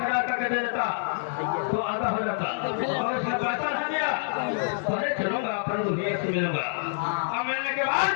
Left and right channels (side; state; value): right; silent; digital silence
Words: हजार करके दे देता तो आधा हो जाता, और उसने पैसा नहीं दिया पहले चलूंगा अपन दुनिया से मिलूंगा, अब मिलने के बाद